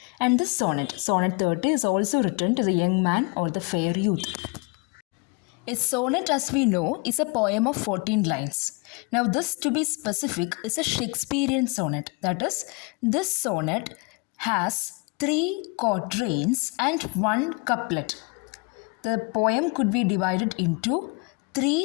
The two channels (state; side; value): quieter; right; 30.0 dB